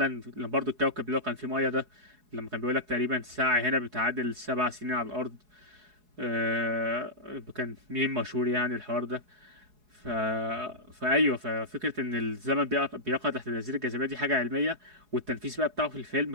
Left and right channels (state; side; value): late; left; 4.7 ms